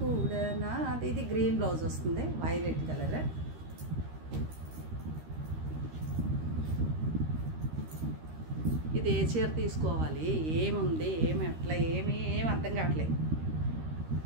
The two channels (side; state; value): left; late; 13 ms